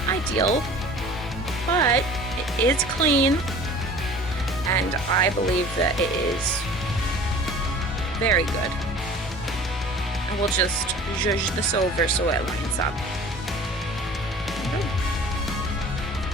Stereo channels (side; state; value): both; normal; correlation 0.44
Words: ideal, but it is clean, and I believe that it is very good. And we'll just zhuzh this over so it lines up.